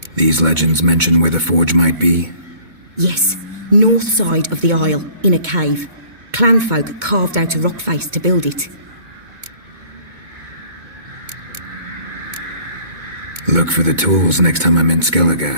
These legends mention where the forge might be? Yes, north side of the isle, in a cave. Clanfolk carved out a rock face to build it. Look for the tools next time I'm in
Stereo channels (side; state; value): left; late; 2.2 ms